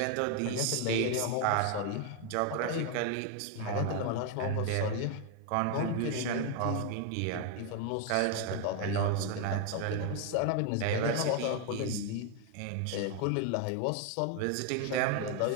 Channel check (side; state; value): both; different; correlation 0.00